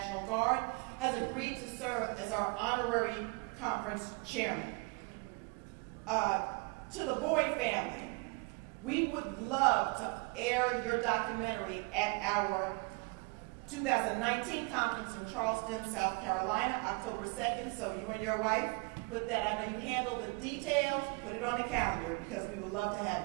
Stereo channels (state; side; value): quieter; left; 30.4 dB